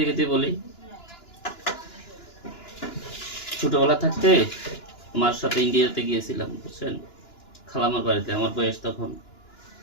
খেতে বলি, ছোটবেলা থাকতে মার সাথে ইন্ডিয়াতে গিয়েছিলাম বুঝছেন, খালামার বাড়িতে। আমার বয়স তখন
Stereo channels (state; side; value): late; right; 2.9 ms